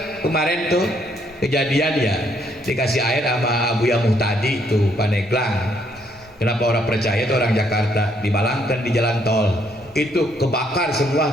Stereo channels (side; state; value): both; normal; correlation 0.70